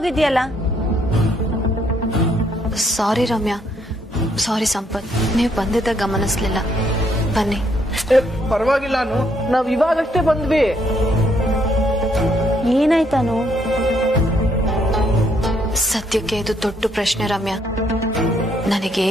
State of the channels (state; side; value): normal; both; correlation 0.71